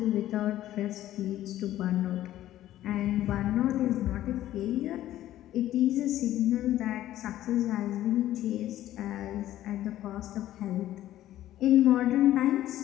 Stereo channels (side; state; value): right; quieter; 13.5 dB